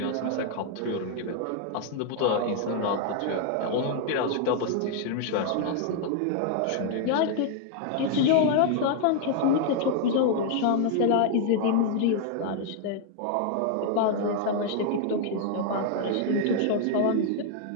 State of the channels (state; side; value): different; both; correlation 0.00